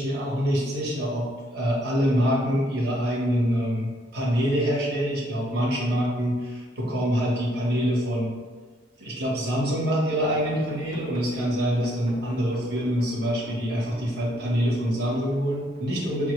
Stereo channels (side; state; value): both; normal; correlation 0.70